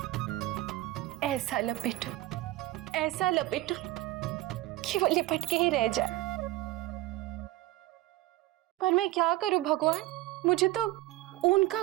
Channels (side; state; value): left; quieter; 17.3 dB